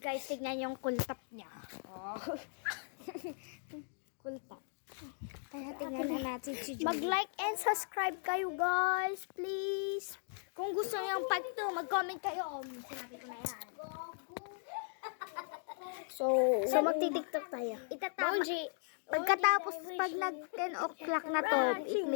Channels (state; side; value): silent; right; digital silence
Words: tignan yung kultap niya. Oh. Kultap. Kaya tingnan na natin si Julie. Mag-like and subscribe kayo guys, please. Kung gusto niyo yung part 2, mag-comment kayo. Sinabi ko na yan. So magti-tiktok tayo. Itatama. Pagkatapos, pag nag 10 o'clock na to, it